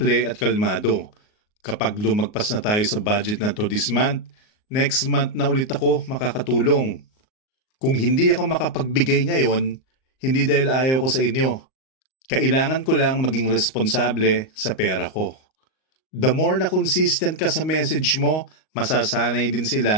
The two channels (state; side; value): late; right; 38 ms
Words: at kalmado. Kapag lumagpas na tayo sa budget na to this month, next month na ulit ako makakatulong. Kung hindi ako makapagbigay ngayon, hindi dahil ayaw ko sa inyo. Kailangan ko lang maging responsable sa pera ko. The more na consistent ka sa message mo, masasanay din